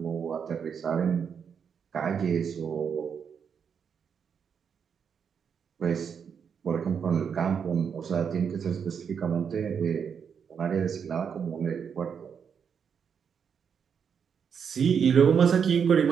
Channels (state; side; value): quieter; left; 7.0 dB